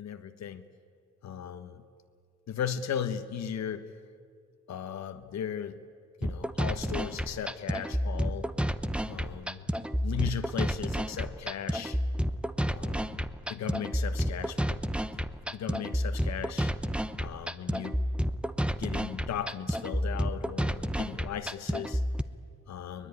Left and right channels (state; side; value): normal; both; correlation 0.75